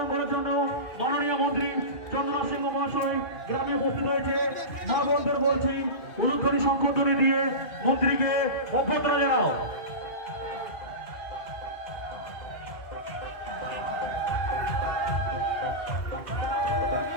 করার জন্য মাননীয় মন্ত্রী চন্দন সিংহ মহাশয় গ্রামে উপস্থিত হয়েছে। মা বোনদের বলছি অনুদানী সম্পদনে দিয়ে মন্ত্রীকে অভ্যর্থনা জানাও।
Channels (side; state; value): right; late; 2.4 ms